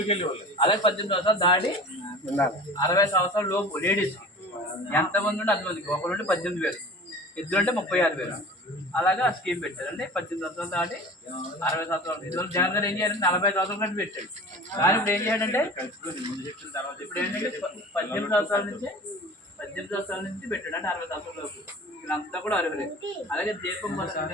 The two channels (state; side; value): normal; both; correlation 0.39